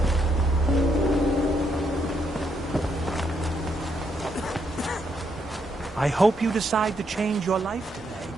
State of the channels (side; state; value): both; normal; correlation 0.76